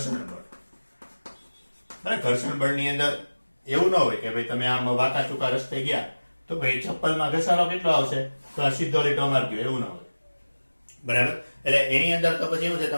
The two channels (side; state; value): both; inverted; correlation -1.00